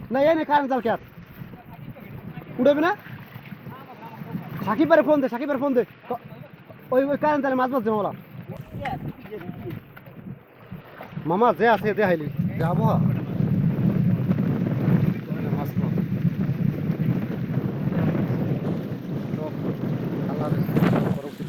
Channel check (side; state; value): both; identical; correlation 1.00